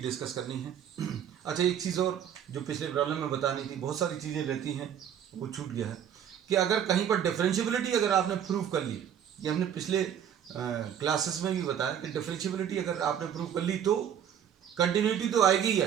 करनी है। अच्छा, एक चीज़ और जो पिछले प्रॉब्लम में बतानी थी, बहुत सारी चीज़ें रहती हैं वो छूट गया है, कि अगर कहीं पर डिफरेंशियबिलिटी अगर आपने प्रूव कर ली, ये हमने पिछले क्लासेस में भी बताया कि डिफरेंशियबिलिटी अगर आपने प्रूव कर ली तो कंटिन्यूटी तो आएगी ही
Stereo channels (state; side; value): quieter; left; 9.2 dB